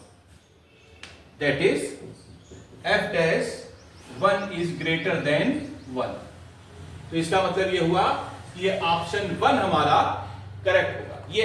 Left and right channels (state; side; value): identical; both; correlation 1.00